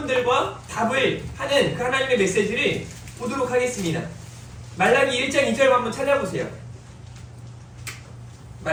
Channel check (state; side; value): identical; both; correlation 1.00